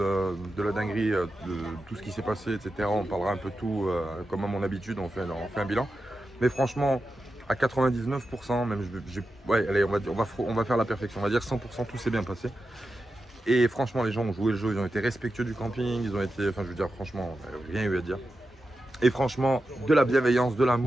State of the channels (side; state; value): both; normal; correlation 0.90